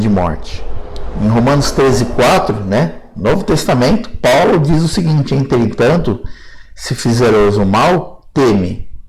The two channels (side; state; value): both; identical; correlation 1.00